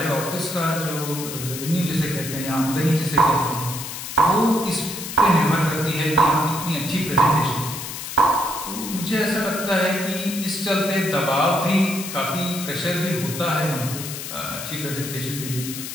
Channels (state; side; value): noise; left; hiss, 8 dB below the sound